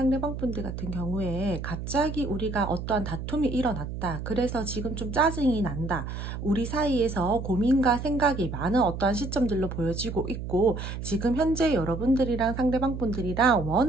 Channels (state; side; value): noise; right; hum, 7 dB below the sound